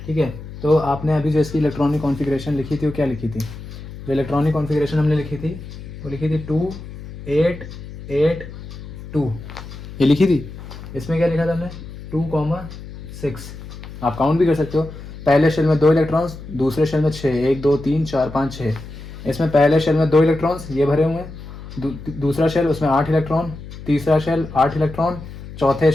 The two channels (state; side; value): noise; left; hum, 13 dB below the sound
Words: ठीक है, तो आपने अभी जो इसकी इलेक्ट्रॉनिक कॉन्फ़िगरेशन लिखी थी वो क्या लिखी थी, जो इलेक्ट्रॉनिक कॉन्फ़िगरेशन हमने लिखी थी वो लिखी थी 2 8 8 2, ये लिखी थी। इसमें क्या लिखा था हमने, 2,6। आप काउंट भी कर सकते हो, पहले शेल में 2 इलेक्ट्रॉन्स, दूसरे शेल में 6, 1 2 3 4 5 6। इसमें पहले शेल में 2 इलेक्ट्रॉन्स ये भरे हुए हैं, दूसरा शेल उसमें 8 इलेक्ट्रॉन, तीसरा शेल 8 इलेक्ट्रॉन, चौथे